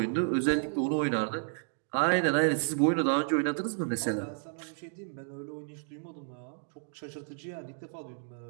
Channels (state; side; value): silent; left; digital silence